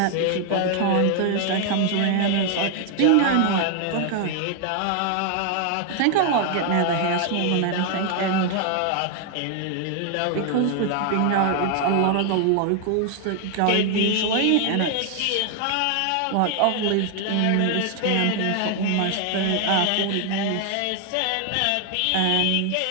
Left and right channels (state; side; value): different; both; correlation 0.00